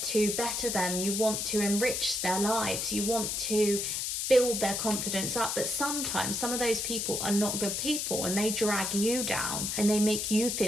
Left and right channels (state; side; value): noise; left; hiss, 1 dB below the sound